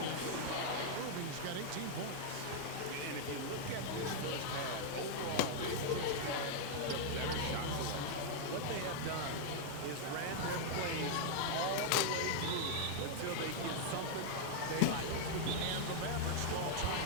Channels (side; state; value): both; different; correlation -0.01